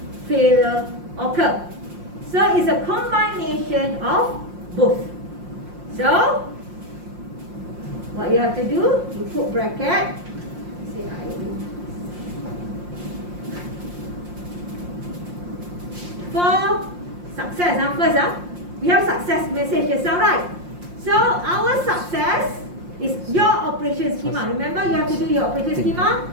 failure occur. So it's a combination of both. So what you have to do, you put bracket. Say I do. For success, first, we have success message just now, right? So our success is your operation schema. Remember, you have to do your operation schema.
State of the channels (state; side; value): late; left; 5.7 ms